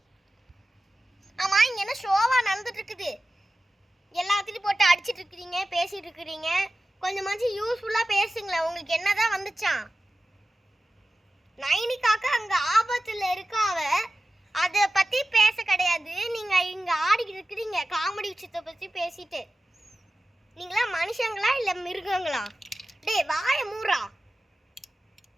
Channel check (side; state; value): both; normal; correlation 0.95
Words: ஆமா, இங்க என்ன ஷோவா நடந்துட்டு இருக்குது? எல்லாத்தையும் போட்டு அடிச்சிட்டு இருக்கிறீங்க, பேசிட்டு இருக்கிறீங்க. கொஞ்சமாச்சும் யூஸ்ஃபுல்லா பேசுங்களேன். உங்களுக்கு என்னதான் வந்துச்சான்? நைனிகாக்கு அங்க ஆபத்துல இருக்காவ, அதை பத்தி பேச கிடையாது. நீங்க இங்க ஆடிக்கிட்டு இருக்கிறீங்க காமெடி விஷயத்தை பத்தி பேசிட்டு. நீங்களா மனுஷங்களா இல்ல மிருகங்களா? டேய் வாய மூறா.